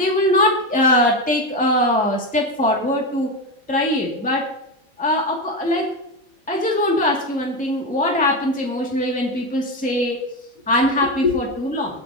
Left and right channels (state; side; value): normal; both; correlation 0.14